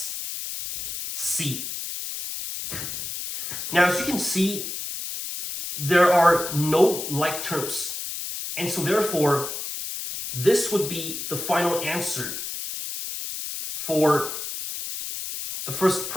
Now, as you can see, there are no like terms, and so therefore this would be the final answer for the first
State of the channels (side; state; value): left; noise; hiss, 6 dB below the sound